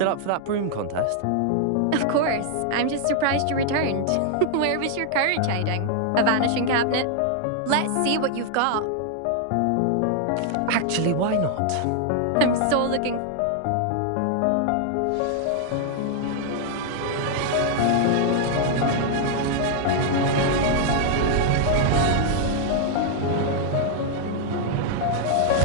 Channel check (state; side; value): different; both; correlation 0.00